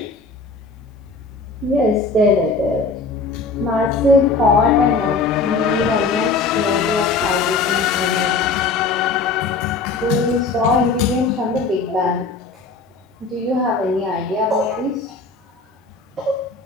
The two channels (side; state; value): right; quieter; 4.1 dB